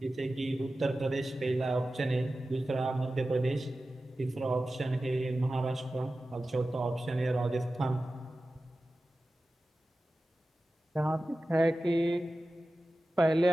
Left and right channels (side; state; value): both; normal; correlation 0.95